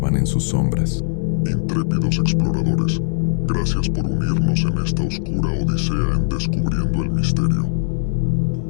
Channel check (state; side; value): silent; right; 65 dB below the other